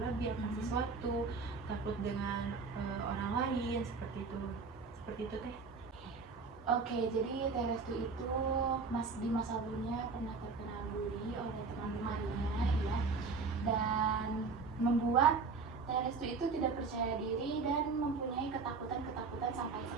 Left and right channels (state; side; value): quieter; left; 4.6 dB